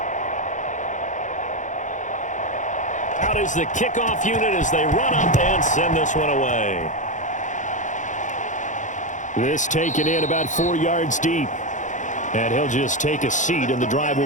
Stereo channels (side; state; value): right; late; 0.36 ms